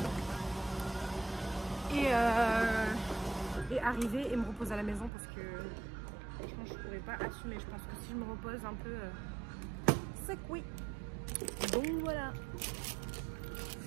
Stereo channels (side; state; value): left; drops out; at 5.1 s